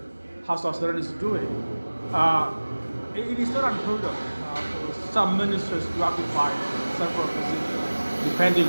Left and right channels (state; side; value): inverted; both; correlation -1.00